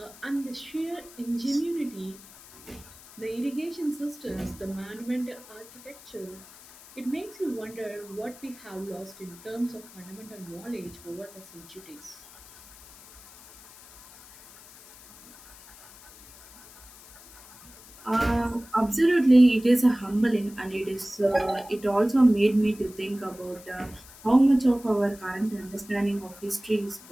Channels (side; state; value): left; noise; hiss, 21 dB below the sound